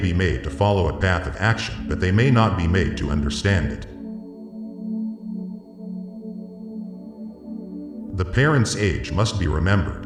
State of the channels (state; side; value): identical; both; correlation 1.00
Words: made to follow a path of action, but they may not be made to understand it. The parent's age must be